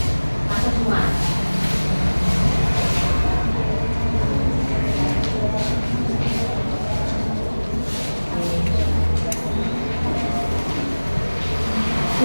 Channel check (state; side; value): inverted; both; correlation -1.00